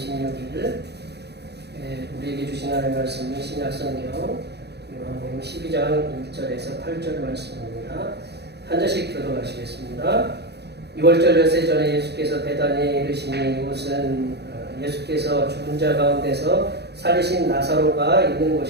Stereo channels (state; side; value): late; left; 0.48 ms